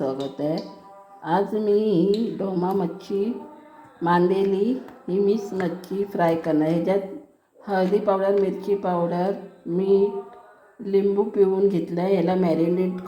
आहे. आज मी ढोमा मच्छी मांदेली ही मिक्स मच्छी फ्राय करणार. ह्याच्यात हळदी पावडर, मिरची पावडर, मीठ, लिंबू पिळून घेतलं आहे. याला मॅरिनेट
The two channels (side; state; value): both; identical; correlation 1.00